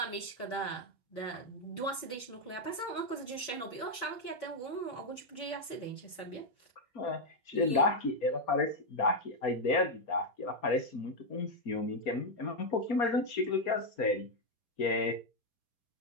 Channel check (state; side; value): late; right; 4.3 ms